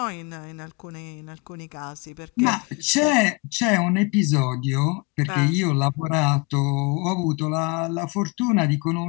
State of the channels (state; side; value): quieter; right; 28.3 dB